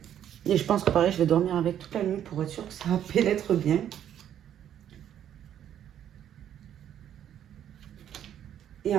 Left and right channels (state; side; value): quieter; left; 10.2 dB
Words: Et je pense que pareil, je vais dormir avec toute la nuit pour être sûr que ça pénètre bien. Et